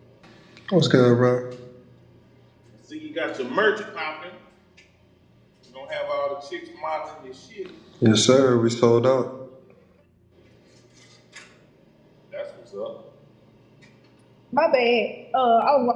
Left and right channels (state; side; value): identical; both; correlation 1.00